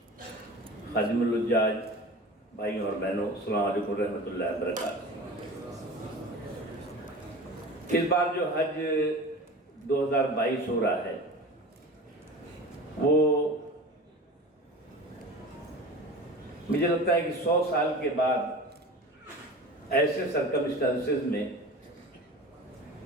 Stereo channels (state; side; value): normal; both; correlation 0.36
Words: खादिमुल हुज्जाज भाइयों और बहनों, अस्सलाम वालेकुम रहमतुल्लाहि व बरकातहू। इस बार जो हज 2022 हो रहा है वो मुझे लगता है कि 100 साल के बाद ऐसे सर्कमस्टेंसेस में